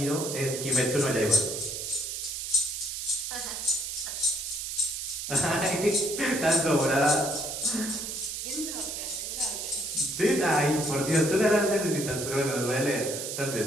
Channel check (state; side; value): noise; right; hiss, 5 dB below the sound